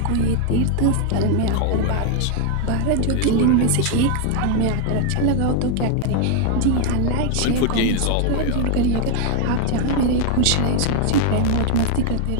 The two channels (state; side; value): different; both; correlation 0.00